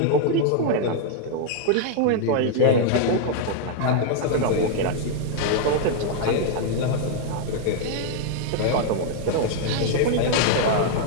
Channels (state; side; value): different; both; correlation 0.00